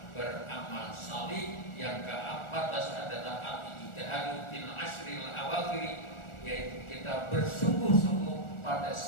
salih. Yang ke-14 adalah al-ijtihadu fil ashril awakhir, yaitu kita bersungguh-sungguh pada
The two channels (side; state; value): right; late; 1.4 ms